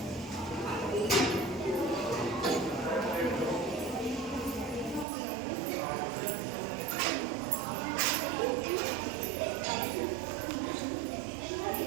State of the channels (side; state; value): left; drops out; at 5.1 s